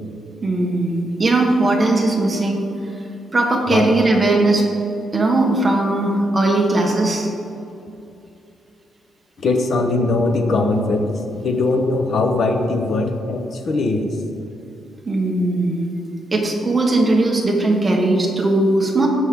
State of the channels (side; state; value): both; normal; correlation 0.79